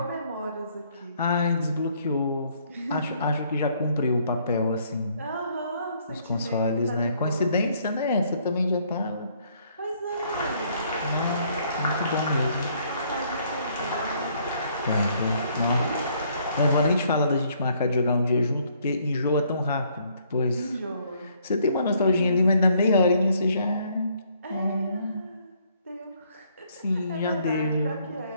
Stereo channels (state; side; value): inverted; both; correlation -0.66